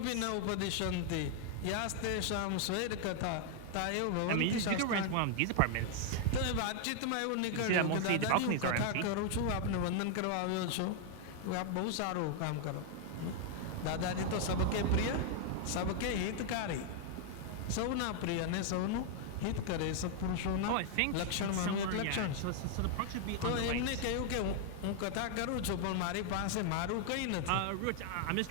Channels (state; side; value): different; both; correlation 0.00